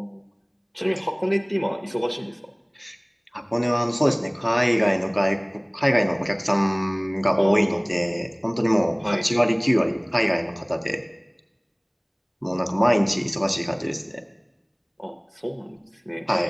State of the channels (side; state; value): both; identical; correlation 1.00